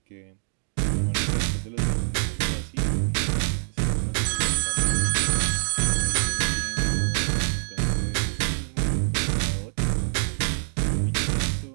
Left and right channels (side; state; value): left; silent; digital silence